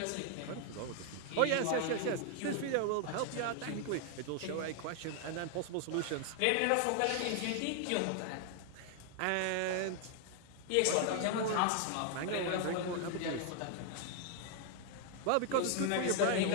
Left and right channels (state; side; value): different; both; correlation 0.00